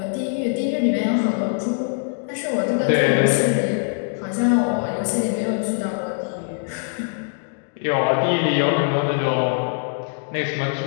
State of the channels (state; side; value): silent; right; 64 dB below the other